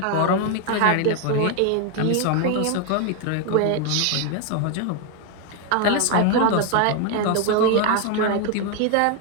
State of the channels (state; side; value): different; both; correlation 0.00